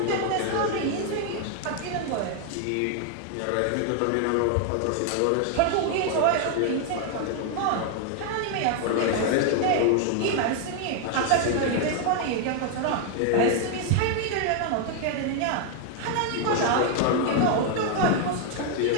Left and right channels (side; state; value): both; different; correlation 0.00